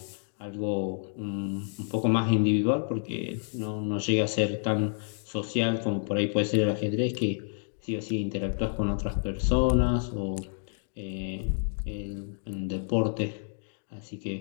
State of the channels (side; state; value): right; silent; digital silence